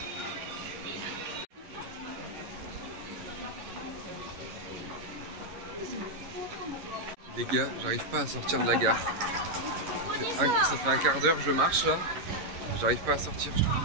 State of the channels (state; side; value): late; left; 11 ms